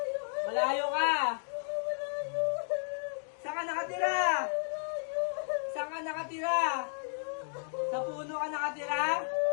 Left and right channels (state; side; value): silent; right; digital silence